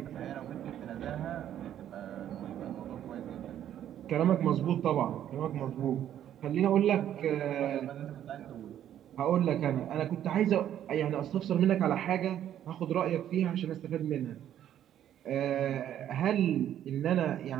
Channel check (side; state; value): left; quieter; 10.9 dB